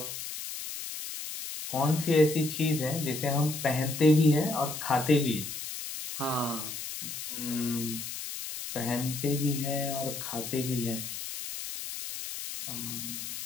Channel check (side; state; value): left; noise; hiss, 7 dB below the sound